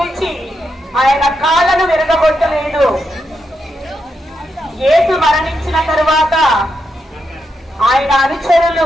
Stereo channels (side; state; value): both; normal; correlation 0.84